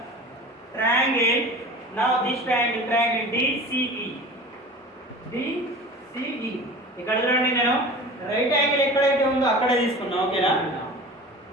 triangle, now this triangle DCE. DCE. ఇక్కడ చూడండి నేను right angle ఎక్కడైతే ఉందో అక్కడే తీసుకున్నా. ఓకేనా?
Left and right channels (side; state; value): both; normal; correlation 0.37